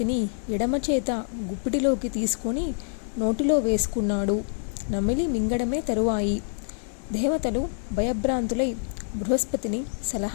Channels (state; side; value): silent; right; digital silence